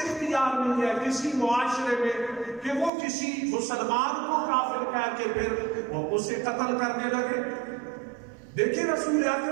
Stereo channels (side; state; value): left; drops out; at 2.9 s